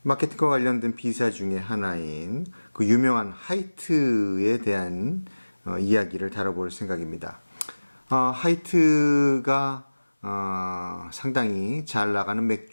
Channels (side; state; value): both; inverted; correlation -1.00